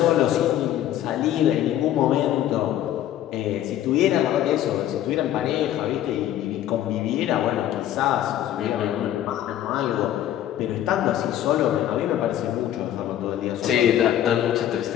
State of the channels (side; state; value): right; quieter; 11.9 dB